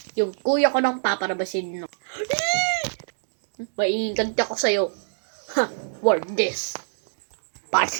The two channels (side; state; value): left; silent; digital silence